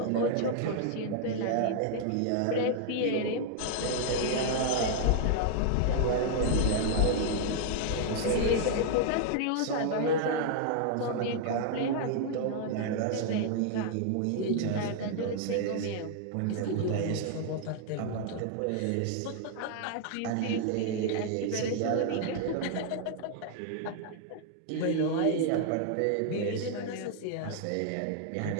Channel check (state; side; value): different; both; correlation 0.00